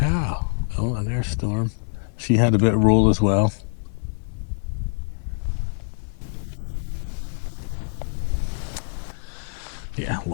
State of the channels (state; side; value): silent; right; digital silence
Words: Oh, and there's Storm. She had a bit of roll as well. Yeah,